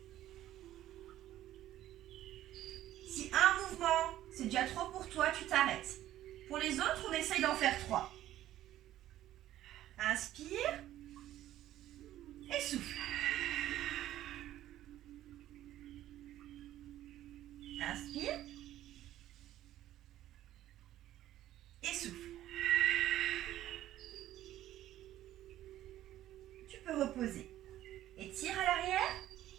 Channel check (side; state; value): left; quieter; 13.4 dB